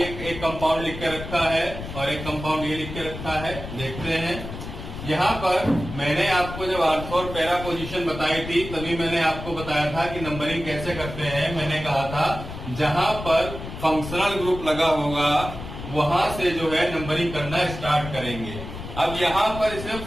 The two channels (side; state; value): left; noise; rumble, 10 dB below the sound